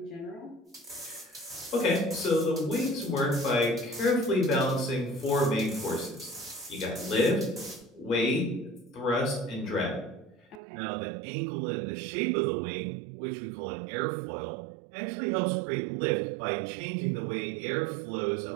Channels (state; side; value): drops out; left; at 10.6 s